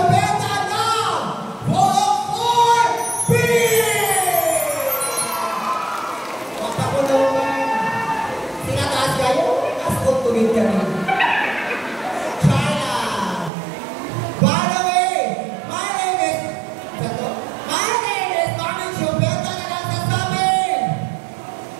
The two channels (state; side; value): drops out; left; at 13.5 s